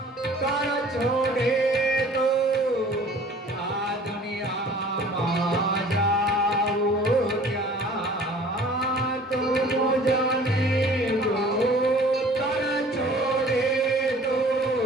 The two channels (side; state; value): both; normal; correlation 0.50